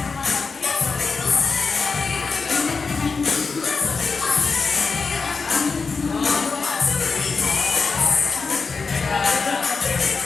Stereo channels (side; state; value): right; quieter; 4.7 dB